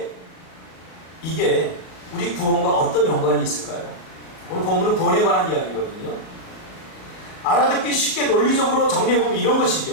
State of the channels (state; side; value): late; right; 37 ms